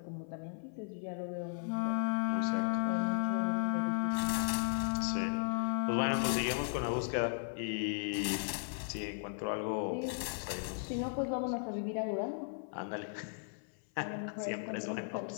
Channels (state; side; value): silent; right; 54 dB below the other